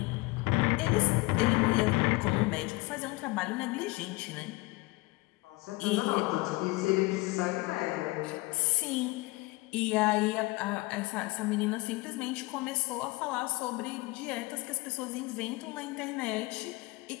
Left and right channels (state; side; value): quieter; right; 23.1 dB